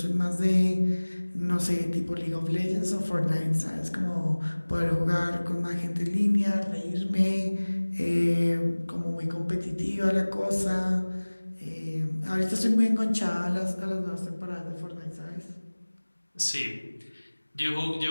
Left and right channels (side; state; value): both; inverted; correlation -1.00